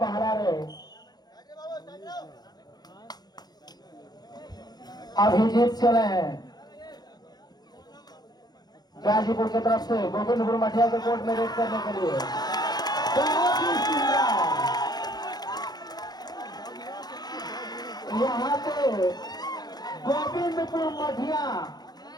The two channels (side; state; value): right; late; 0.19 ms